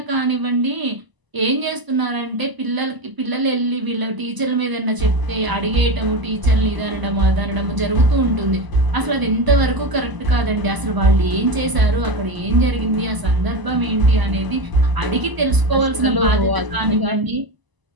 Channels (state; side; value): late; left; 1.0 ms